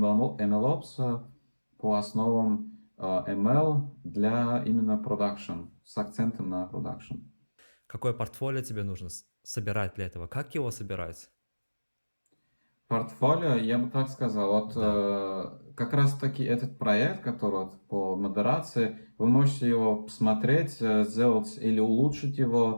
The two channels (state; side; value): inverted; both; correlation -1.00